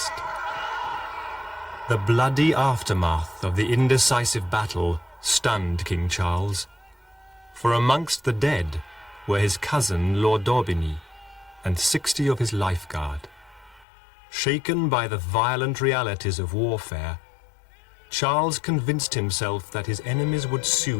The bloody aftermath of the indecisive battle stunned King Charles, for amongst the dead were his cousin Lord Daubigny and 60 of his lifeguard. Shaken by the violent realities of warfare, Charles convinced himself that his enemies would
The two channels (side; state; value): right; drops out; at 13.9 s